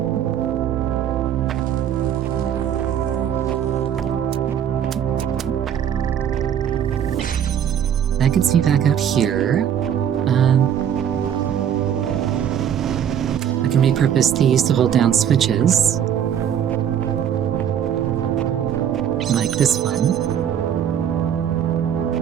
That gets me back out here. I can repurpose these to hold down switches. Like this one.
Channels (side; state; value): left; quieter; 9.2 dB